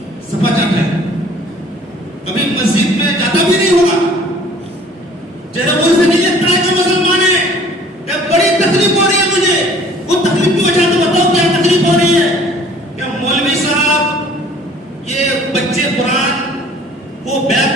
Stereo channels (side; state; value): both; normal; correlation 0.52